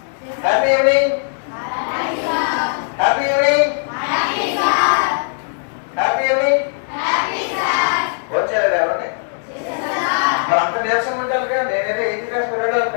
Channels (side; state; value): right; silent; digital silence